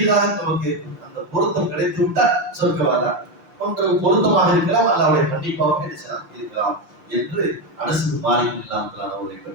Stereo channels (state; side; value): late; left; 6.7 ms